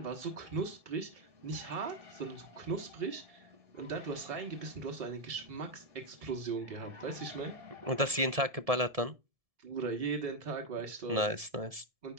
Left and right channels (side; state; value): left; late; 1.7 ms